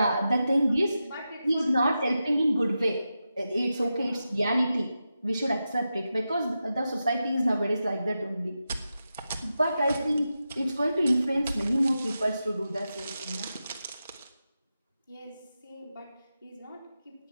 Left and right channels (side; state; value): both; inverted; correlation -0.90